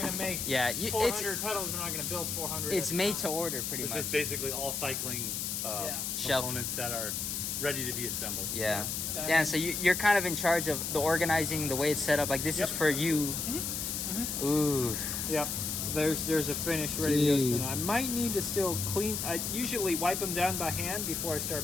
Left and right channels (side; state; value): left; noise; hiss, 2 dB below the sound